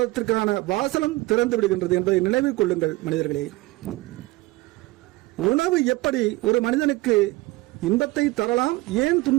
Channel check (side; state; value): left; quieter; 20.9 dB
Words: வாசலும் திறந்து விடுகின்றது என்பதை நினைவில் கொள்ளுங்கள் மனிதர்களே. உணவு எப்படி ஒரு மனிதனுக்கு இன்பத்தை தரலாம், ஏன்